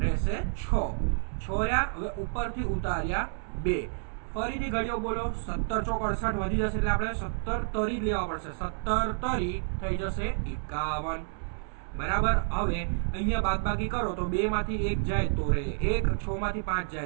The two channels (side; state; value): left; silent; 58 dB below the other